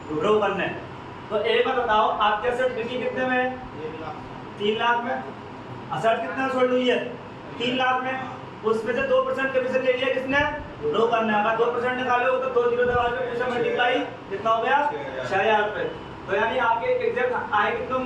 ब्रोकर ने। तो एक बार बताओ, आपके असेट बिकी कितने में? 3 लाख में। असेट कितना सोल्ड हुई है? 3 लाख में। उसमें से 2% कमीशन ले लिया किसने? ब्रोकर ने। अगर 2% निकालोगे तो 2 जीरो दबा के पैसा मल्टीप्लाई कितना हो गया? 6,000 रुपये। तो यानी आपके एग्जैक्ट आए कितने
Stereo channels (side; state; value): both; identical; correlation 1.00